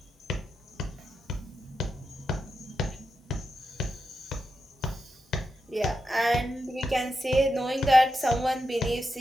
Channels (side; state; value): both; normal; correlation 0.87